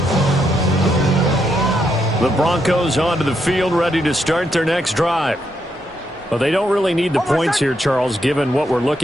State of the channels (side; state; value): both; normal; correlation 0.79